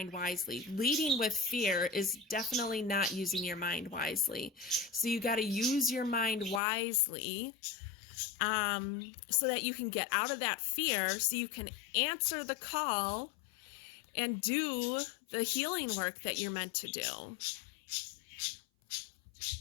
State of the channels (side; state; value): right; drops out; at 6.6 s